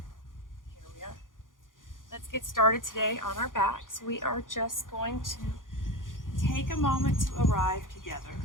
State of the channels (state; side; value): late; right; 0.89 ms